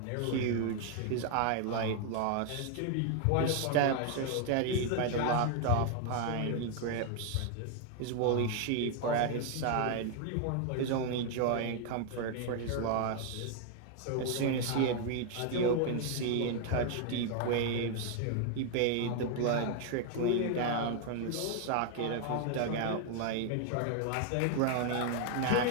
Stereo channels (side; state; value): both; different; correlation 0.00